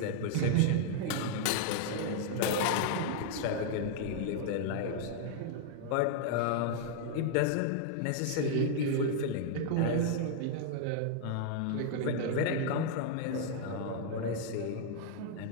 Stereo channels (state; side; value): different; both; correlation 0.00